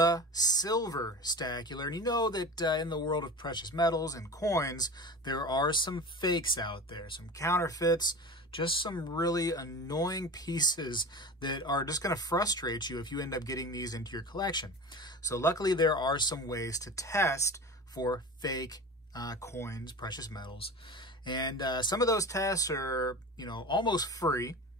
Silver Stacular, and you know that in the world of precious metals and coins, there are some fakes out there, some counterfeits, just some really annoying pieces that are just going to frustrate you if you end up getting these into your collection. So luckily there are some ways to test for fake coins, precious metals, and some of those tests are, almost free.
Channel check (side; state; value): both; normal; correlation 0.32